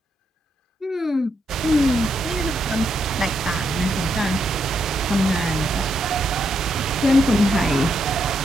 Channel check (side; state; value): both; normal; correlation 0.80